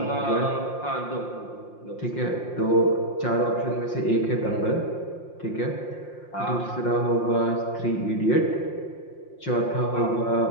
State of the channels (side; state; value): right; late; 5.7 ms